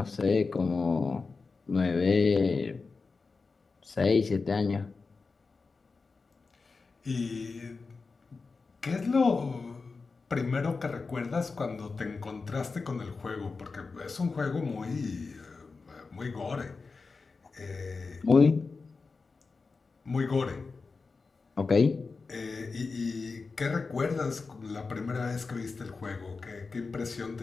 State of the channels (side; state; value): right; quieter; 4.3 dB